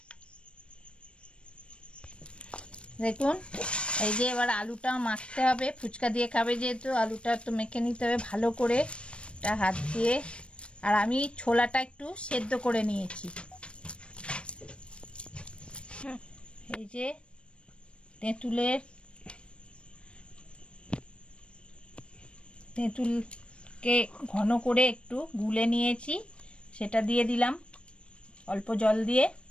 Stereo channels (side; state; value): right; late; 0.058 ms